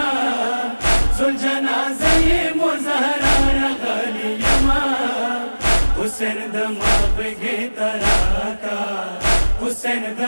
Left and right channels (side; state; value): both; inverted; correlation -1.00